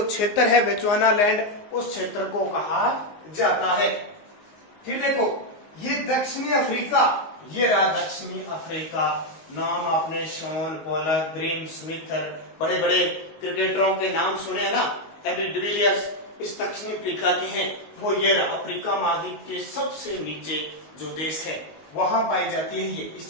क्षेत्र है बेचुआनालैंड, उस क्षेत्र को कहा जाता है। फिर देखो, ये दक्षिणी अफ्रीका, ये रहा दक्षिणी अफ्रीका। नाम आपने शॉन पोलक, ग्रीम स्मिथ, बड़े बड़े क्रिकेटरों के नाम सुने हैं ना, एबी डिविलियर्स, इस दक्षिणी अफ्रीका के हैं। वो ये रहा, अफ्रीका महाद्वीप के सबसे नीचे जो देश है वहां पाई जाती है ये, इस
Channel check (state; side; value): late; right; 19 ms